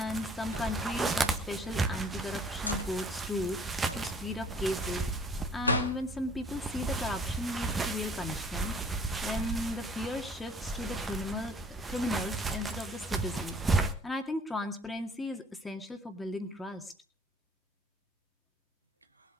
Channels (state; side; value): normal; both; correlation 0.54